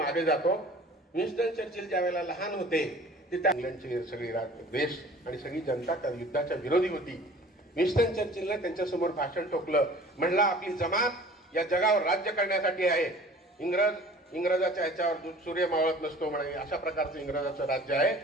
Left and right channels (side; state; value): both; normal; correlation 0.47